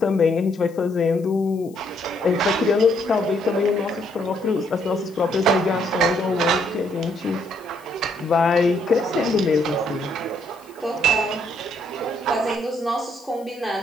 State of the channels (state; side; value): noise; left; hiss, 27 dB below the sound